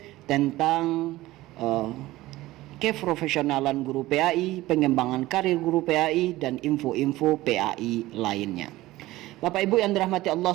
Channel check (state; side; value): quieter; left; 17.5 dB